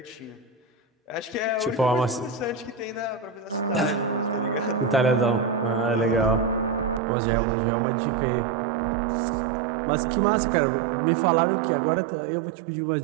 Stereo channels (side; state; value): left; drops out; at 7.0 s